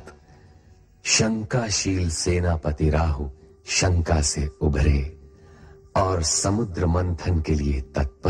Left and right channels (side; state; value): both; identical; correlation 1.00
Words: शंकाशील सेनापति राहु शंका से उभरे और समुद्र मंथन के लिए